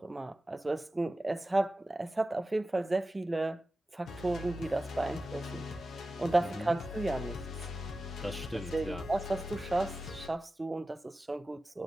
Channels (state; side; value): normal; both; correlation 0.94